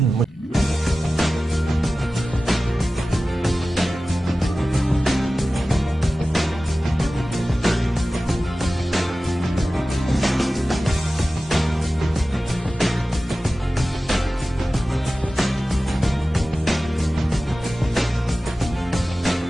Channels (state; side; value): normal; both; correlation 0.95